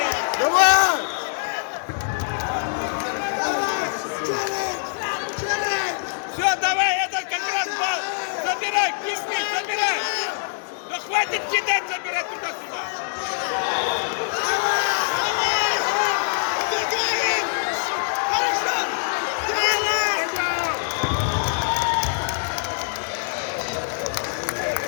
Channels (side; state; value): right; silent; digital silence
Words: Давай! Все, давай, этот как раз балл! Забирай, кирпич, забирай! Да хватит кидать, забирать туда-сюда!